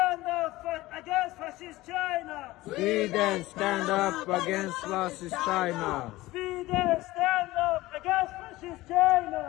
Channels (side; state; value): right; quieter; 18.5 dB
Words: up against fascist China! Sweden, stand up against fascist China. Sweden, stand up against fascist